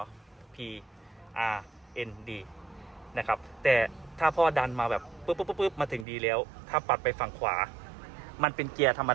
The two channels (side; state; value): left; drops out; at 6.1 s